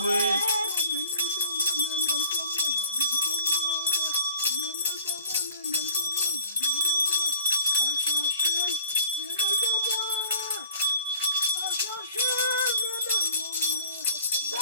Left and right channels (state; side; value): inverted; both; correlation -0.51